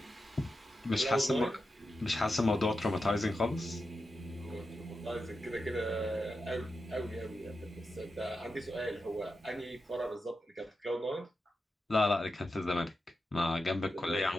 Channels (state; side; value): normal; both; correlation 0.89